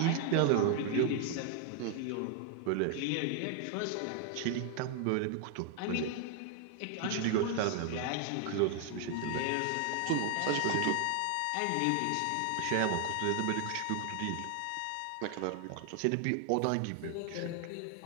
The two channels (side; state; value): both; different; correlation 0.00